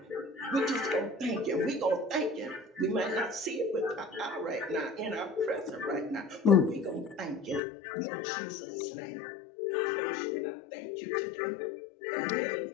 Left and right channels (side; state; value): right; drops out; at 7.6 s